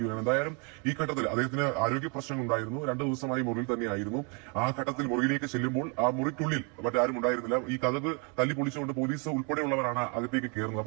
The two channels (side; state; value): left; quieter; 34.7 dB